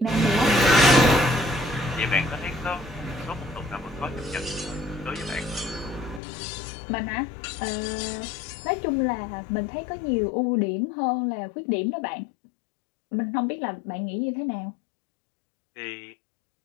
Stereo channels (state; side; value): drops out; right; at 6.2 s